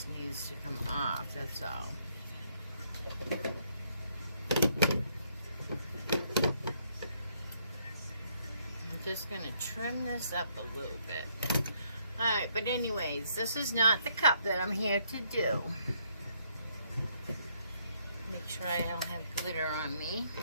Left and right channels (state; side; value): inverted; both; correlation -0.71